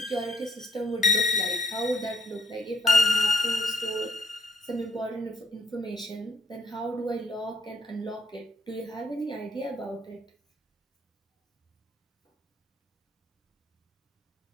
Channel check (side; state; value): both; normal; correlation 0.67